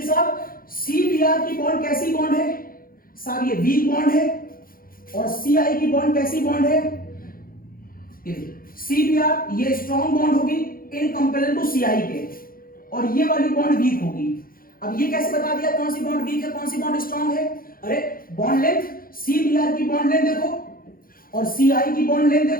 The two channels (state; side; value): late; right; 0.42 ms